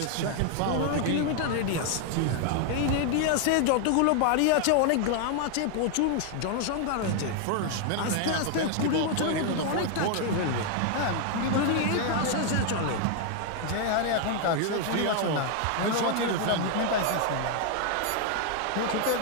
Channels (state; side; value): different; both; correlation 0.00